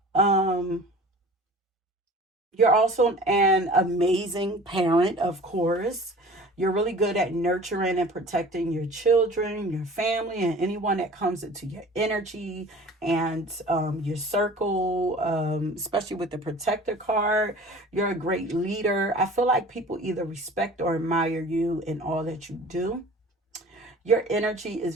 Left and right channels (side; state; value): both; normal; correlation 0.43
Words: Um, you're also an amazing parent, of course. You're really good at nurturing and protecting your children, your family, and anyone that comes into your energy and your circle, especially with the protector card. You're a great leader. I feel like people either respect or admire you in all that you do. Your energy is